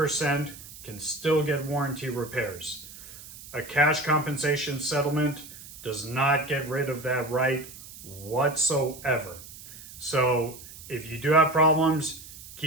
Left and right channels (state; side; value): noise; right; hiss, 16 dB below the sound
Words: can still get warranty repairs. A cash compensation settlement does not get rid of that right whatsoever. So if you do have problems,